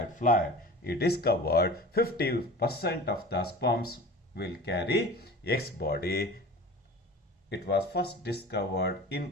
it is covered 50% of the sperms will carry X body. It was first discovered in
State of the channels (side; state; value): both; normal; correlation 0.38